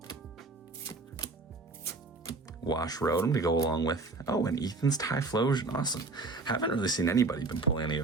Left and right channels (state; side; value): quieter; left; 3.5 dB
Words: Wash Rotom to go along with, and Ethan's Typhlosion. Awesome. Haven't really seen anybody been pulling any